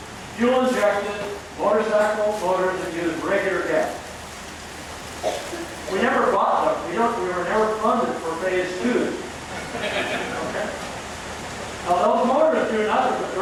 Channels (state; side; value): identical; both; correlation 1.00